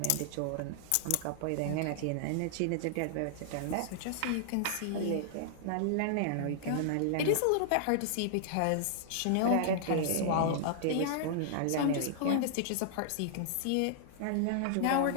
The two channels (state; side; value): different; both; correlation -0.01